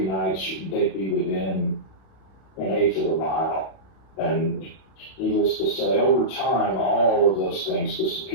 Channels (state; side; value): late; right; 31 ms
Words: nights, they'd be within an eighth of a mile. And needless to say, over time, all of those things